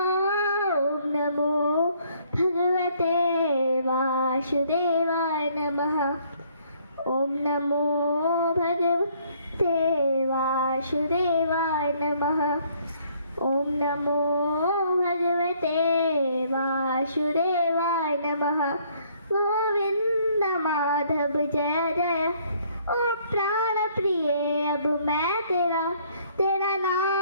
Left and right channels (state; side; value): inverted; both; correlation -0.64